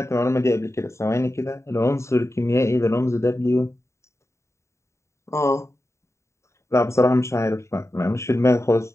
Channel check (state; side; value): late; right; 0.14 ms